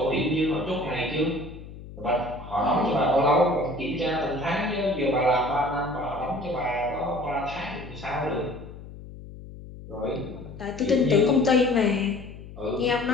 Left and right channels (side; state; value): left; noise; hum, 15 dB below the sound